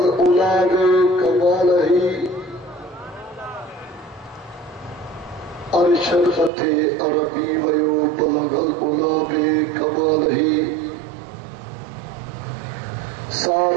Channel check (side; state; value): left; drops out; at 6.5 s